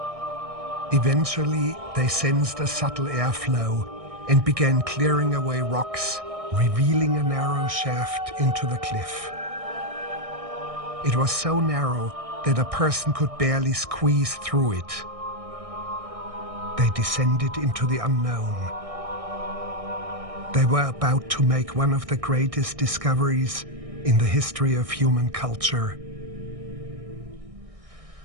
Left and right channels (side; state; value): left; late; 1.6 ms